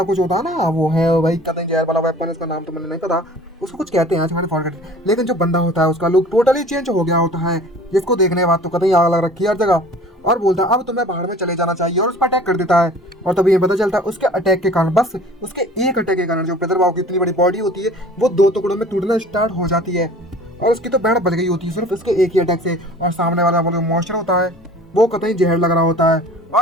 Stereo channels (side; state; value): both; normal; correlation 0.46